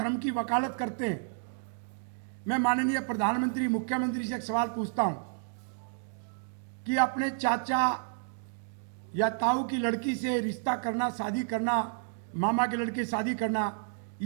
की वकालत करते हैं, मैं माननीय प्रधानमंत्री, मुख्यमंत्री से एक सवाल पूछता हूं कि अपने चाचा या ताऊ की लड़की से रिश्ता करना, शादी करना, मामा के लड़के शादी करना,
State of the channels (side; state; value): left; silent; digital silence